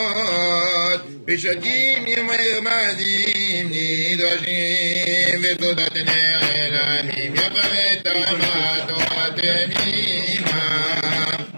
בשדים מרמזים נדרשים ותודת נעלמים יפת המתורת מימה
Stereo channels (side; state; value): both; inverted; correlation -1.00